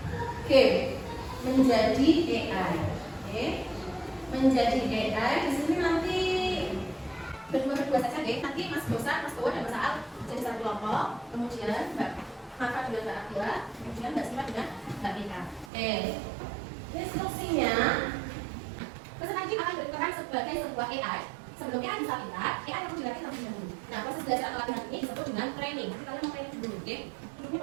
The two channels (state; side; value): drops out; left; at 15.7 s